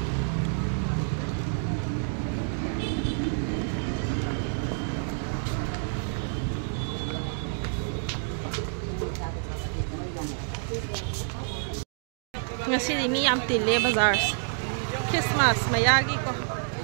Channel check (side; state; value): left; silent; 59 dB below the other